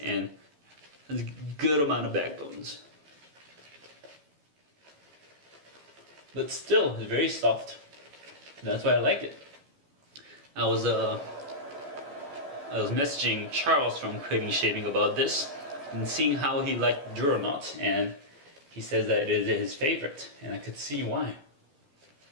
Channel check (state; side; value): late; left; 14 ms